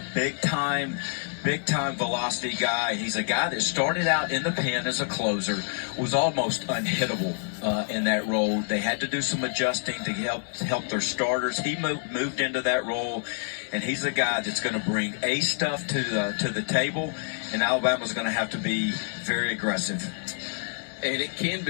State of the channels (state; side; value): silent; right; 60 dB below the other